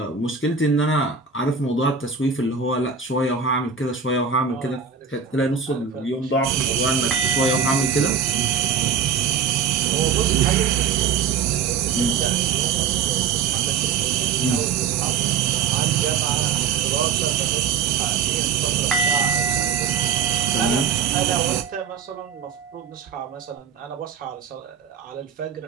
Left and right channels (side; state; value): left; quieter; 6.7 dB